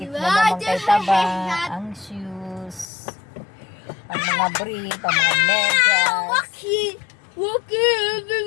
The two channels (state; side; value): drops out; right; at 2.9 s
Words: na naman kay taba ang shoes. Ang mga brief, ang mga medyas.